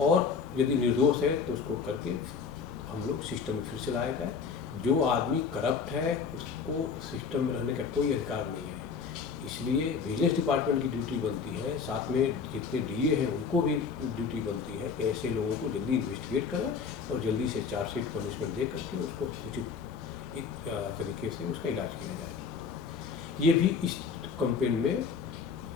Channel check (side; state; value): right; quieter; 5.8 dB